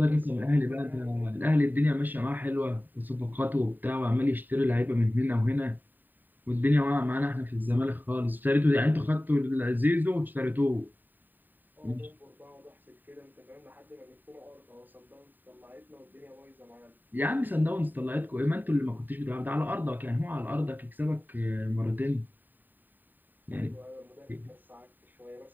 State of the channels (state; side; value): late; left; 0.090 ms